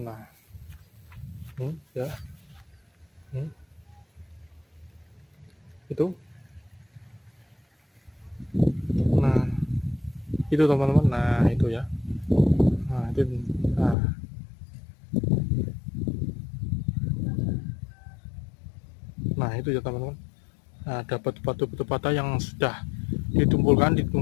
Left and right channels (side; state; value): right; drops out; at 14.0 s